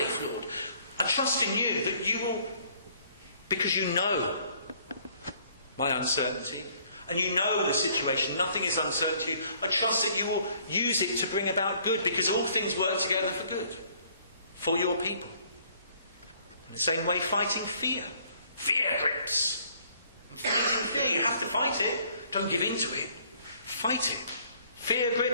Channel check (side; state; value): both; inverted; correlation -0.61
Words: Lord. I trust in you that you will, because you know my uncertainty, and you know the situation, nothing is uncertain to you. I trust that you will use it to bring about good, because all things work together for good, for your people. In the same way, fighting fear. Fear grips. And fighting fear, you have to fight it. Don't give in to it. Fight it. Fear